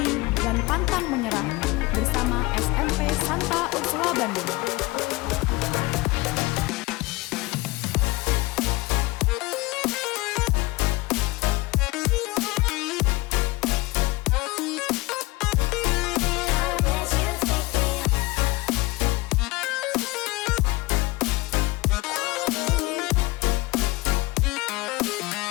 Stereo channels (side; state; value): right; quieter; 21.7 dB